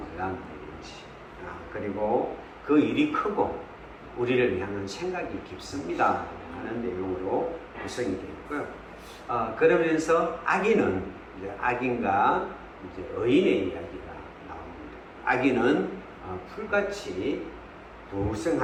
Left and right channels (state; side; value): identical; both; correlation 1.00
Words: 일인지, 그리고 그 일이 크고 우리를 향한 생각이 깊습니다 하는 내용으로 구성이 되어 있고요. 그러면서 악인과 의인의 이야기가 나옵니다. 악인은 풀같이